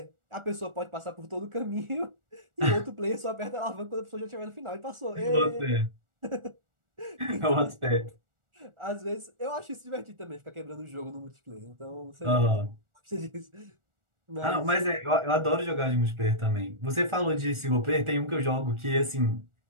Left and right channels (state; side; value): late; left; 1.4 ms